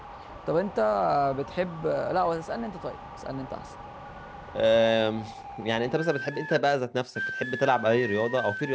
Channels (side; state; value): both; identical; correlation 1.00